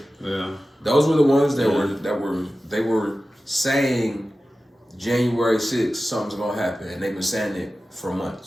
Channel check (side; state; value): both; normal; correlation 0.94